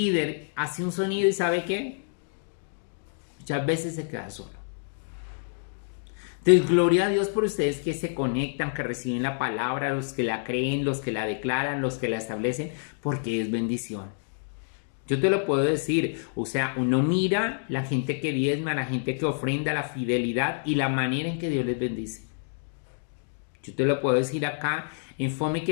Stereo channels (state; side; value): silent; right; digital silence